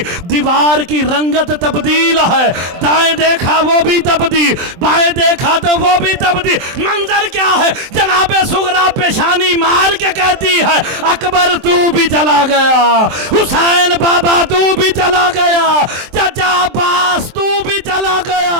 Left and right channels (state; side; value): late; left; 23 ms